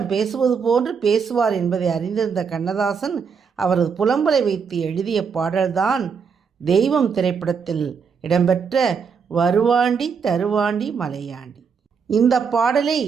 பேசுவது போன்று பேசுவார் என்பதை அறிந்திருந்த கண்ணதாசன் அவரது புலம்பலை வைத்து எழுதிய பாடல்தான் தெய்வம் திரைப்படத்தில் இடம்பெற்ற வருவாண்டி தருவாண்டி மலையாண்டி. இந்த பாடலை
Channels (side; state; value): left; quieter; 6.1 dB